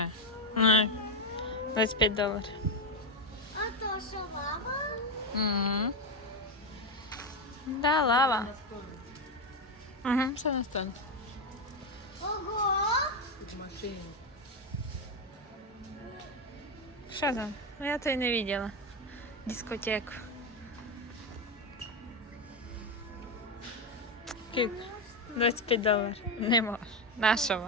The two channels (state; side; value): normal; both; correlation 0.10